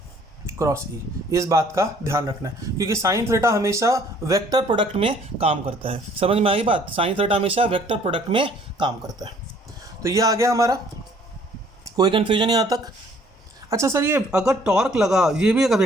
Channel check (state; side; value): normal; both; correlation 0.58